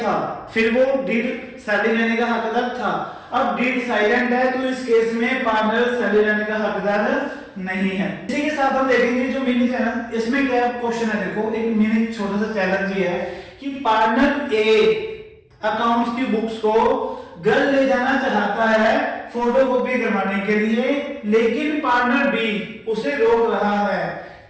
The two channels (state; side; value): identical; both; correlation 1.00